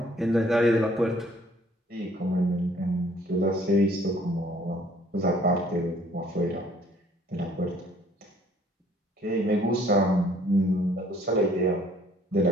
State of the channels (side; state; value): both; normal; correlation 0.59